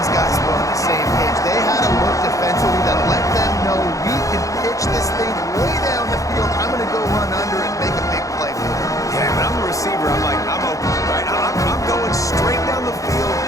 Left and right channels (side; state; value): right; late; 0.16 ms